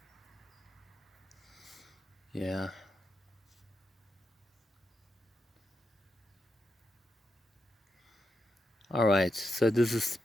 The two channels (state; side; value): normal; both; correlation 0.85